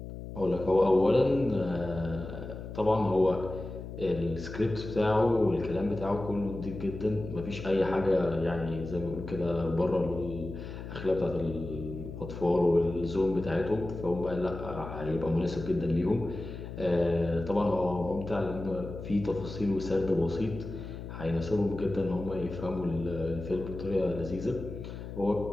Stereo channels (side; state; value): left; noise; hum, 10 dB below the sound